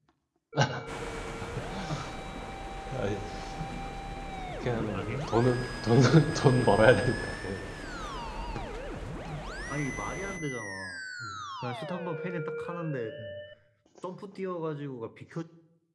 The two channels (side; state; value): both; identical; correlation 1.00